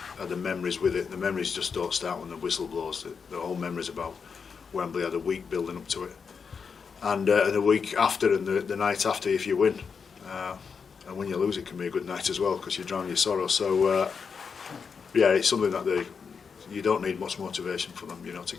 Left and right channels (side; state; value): right; quieter; 5.9 dB